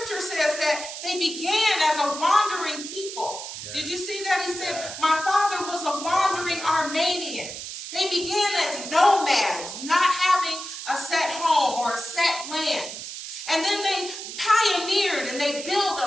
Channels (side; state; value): right; noise; hiss, 9 dB below the sound